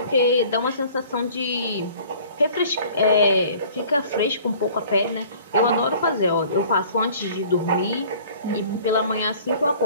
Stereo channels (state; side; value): inverted; both; correlation -0.50